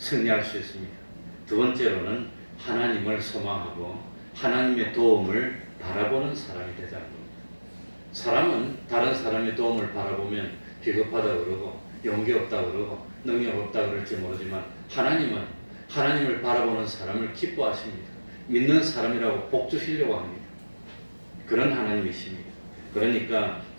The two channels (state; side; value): inverted; both; correlation -1.00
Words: 수 있습니다. 두 번째로는 하나님을 소망하고 하나님의 도움을 바라보는 사람이 되자는 겁니다. 사람은 다른 사람의 도움을 바라보면 비겁하다고 그러고 용기 없다고 그러고 능력 없다고 그럴지 모르지만 하나님은 하나님을 바라보는 사람을 기뻐하십니다. 믿는 사람이라고 복 주시려고 합니다. 그런 하나님이십니다. 그러니까